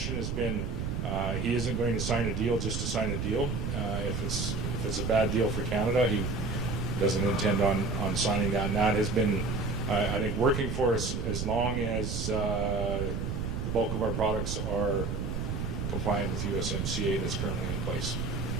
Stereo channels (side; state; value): right; noise; rumble, 2 dB below the sound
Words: has been he isn't going to sign a deal just to sign a deal. If it's a bad deal for Canada, he doesn't intend on signing that. And that has been, I think, working for us as long as the bulk of our products are compliant with USMCA that's currently in place.